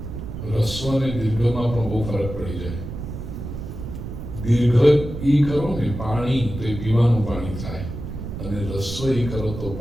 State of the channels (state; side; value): noise; right; rumble, 8 dB below the sound